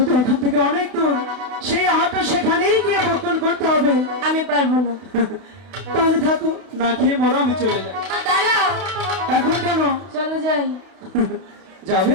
তো এখান থেকে অনেক দূর, সেই আহারটা সেখানেই গিয়ে ভক্ষণ করতে হবে। আমি পারবো না। তাহলে থাকো, না খেয়ে মরো, আমি চলে যাই। দাঁড়াও, এখন কেন চলো যাই। যাবে?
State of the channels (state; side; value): late; left; 31 ms